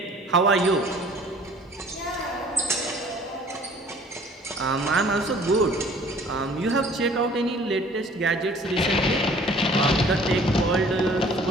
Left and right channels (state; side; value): normal; both; correlation 0.53